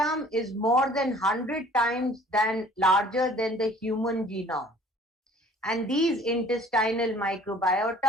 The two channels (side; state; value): both; normal; correlation 0.52